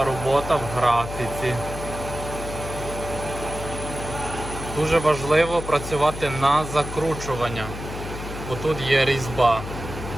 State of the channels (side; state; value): left; noise; hum, 9 dB below the sound